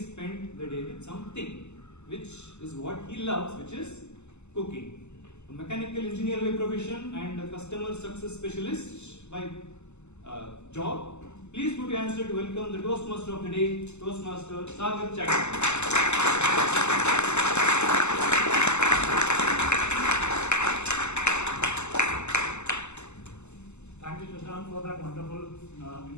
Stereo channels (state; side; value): late; right; 0.82 ms